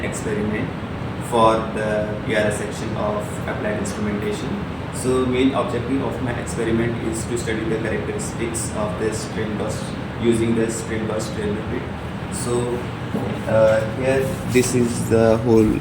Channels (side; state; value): both; identical; correlation 1.00